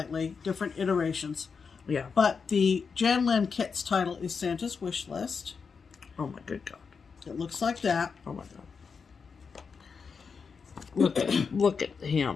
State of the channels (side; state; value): right; quieter; 5.5 dB